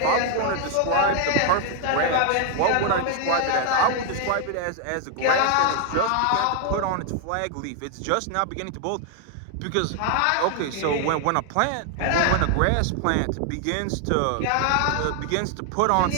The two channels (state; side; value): different; both; correlation 0.00